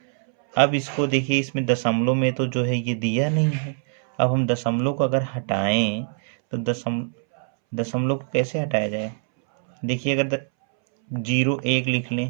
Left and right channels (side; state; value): left; silent; 63 dB below the other